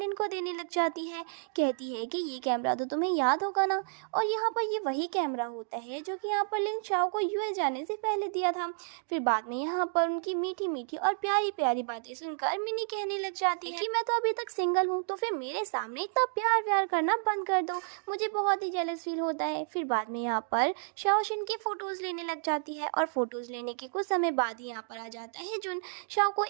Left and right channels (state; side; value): silent; left; digital silence